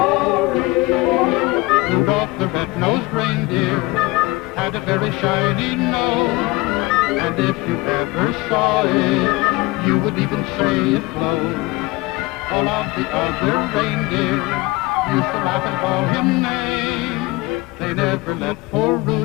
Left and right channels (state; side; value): quieter; right; 21.7 dB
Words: Rudolph the red-nosed reindeer had a very shiny nose, and if you ever saw it, you would even say it glowed. All of the other reindeer used to laugh and call him names. They never let poor